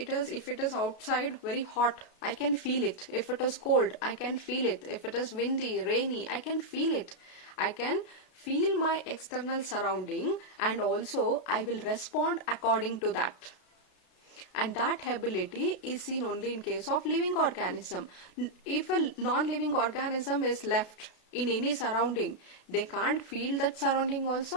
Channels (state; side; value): late; right; 32 ms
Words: it is outside very hot, I can feel it. If it is cold, I can feel it. If it is windy, rainy, I can feel it. I can feel my external surrounding, and also I will respond according to that. And that ability is seen only in case of living organism. If a non-living organism is left in any surrounding, they can't feel that surrounding also,